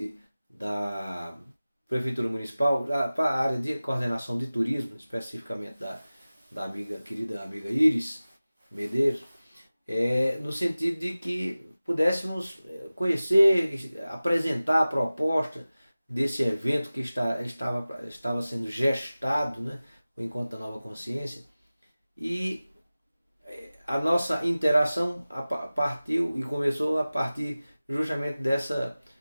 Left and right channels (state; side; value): inverted; both; correlation -0.97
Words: da Prefeitura Municipal para a área de coordenação de turismo, especificamente da querida amiga Iris Medeiros, no sentido de que pudéssemos conhecer, apresentar a proposta desse evento que estava sendo gestado, né, o Encontro da Nova Consciência, e a nossa interação partiu e começou a partir justamente dessa